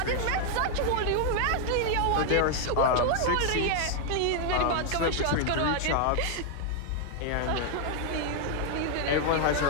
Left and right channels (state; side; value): different; both; correlation 0.00